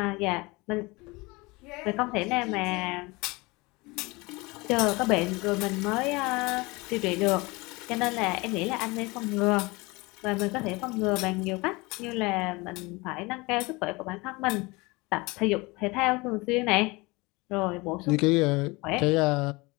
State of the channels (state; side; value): quieter; right; 24.3 dB